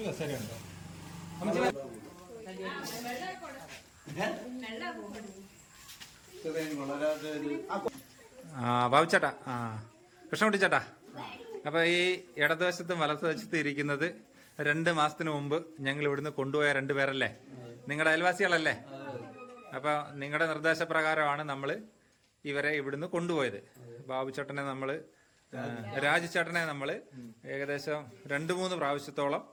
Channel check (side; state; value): both; identical; correlation 1.00